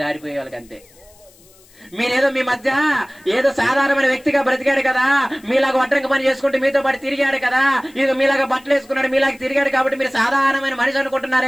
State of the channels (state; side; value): noise; left; hiss, 28 dB below the sound